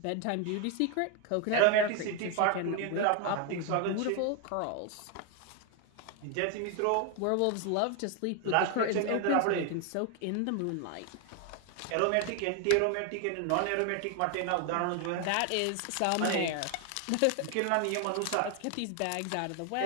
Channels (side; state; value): both; different; correlation 0.01